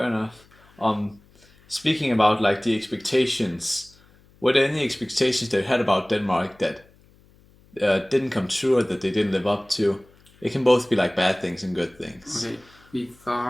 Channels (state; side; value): noise; left; hum, 29 dB below the sound